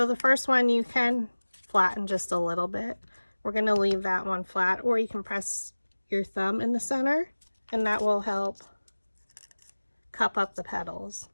the first one you can flatten just a little bit. We're going to leave that one flat, or you can press your thumb in the center and that will help cup up the petals.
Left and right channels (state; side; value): inverted; both; correlation -1.00